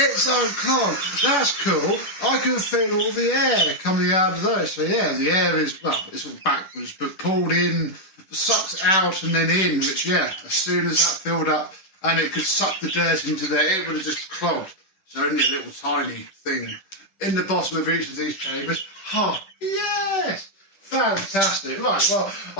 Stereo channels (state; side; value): late; right; 10 ms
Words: unclogged. That's cool. I can feel all the air coming out of those. So yeah, the air is, well, it's all backwards, but pulled in, sucked out and then in, which yeah, as soon as that filled up and it could suck the dirt into there, it would have just clogged. So only a little tiny thing in the bottom of each of these chambers. Oh, yes! Fantastic. Right, well,